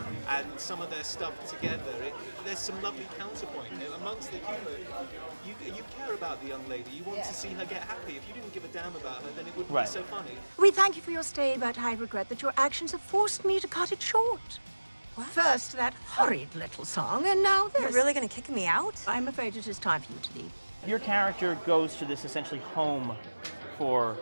and some of their stuff together. There's some lovely counterpoint amongst the humour. You care about the young lady. You want to see her get happy. If you didn't give a damn about her, then it wouldn't be so funny. We thank you for your stay, but I regret that your actions have forced me to cut it short. What? First, that horrid little song, and now this. You're really going to kick me out? I'm afraid it is time for you to leave. Your character goes to this essentially home for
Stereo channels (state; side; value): inverted; both; correlation -1.00